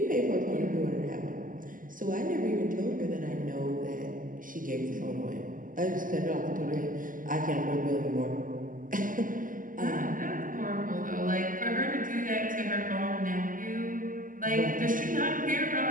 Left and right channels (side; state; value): left; late; 0.39 ms